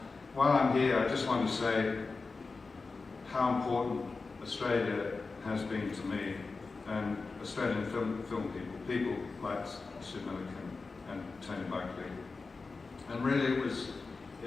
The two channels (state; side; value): quieter; right; 4.1 dB